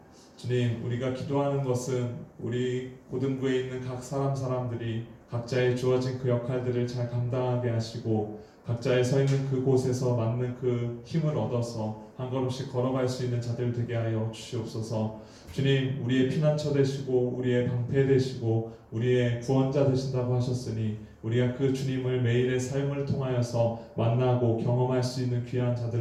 주님, 우리가 기도하는 것은 우리 고등부에 있는 각 사람들이 각자의 주어진 그 역할들을 잘 감당하게 하시고 각자의 서 있는 그곳에서 맞는 그 힘을 얻어서 한 걸음씩 걸어갈 수 있는 자들 되게 하여 주시옵소서. 주님, 우리의 피난처 되시고 우리의 방패 되시고 우리의 구원자 되신다고 하셨으니 우리가 그 주님을 매일의 삶을 통하여서 만나고 경험할 수 있는 귀한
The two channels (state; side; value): identical; both; correlation 1.00